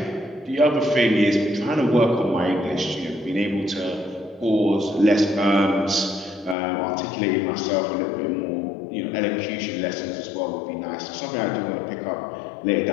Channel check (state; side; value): drops out; right; at 6.6 s